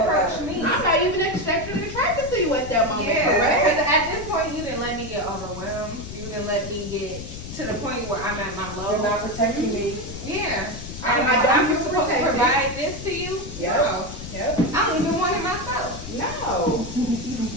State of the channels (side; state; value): left; noise; rumble, 11 dB below the sound